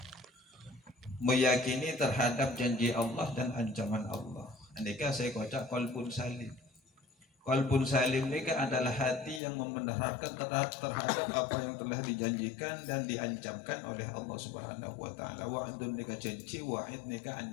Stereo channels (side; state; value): right; drops out; at 9.4 s